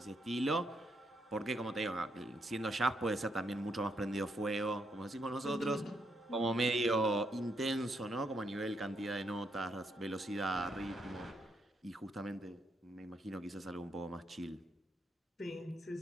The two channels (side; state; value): both; normal; correlation 0.77